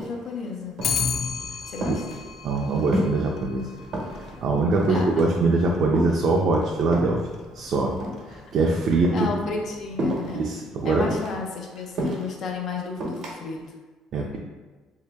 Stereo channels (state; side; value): normal; both; correlation 0.65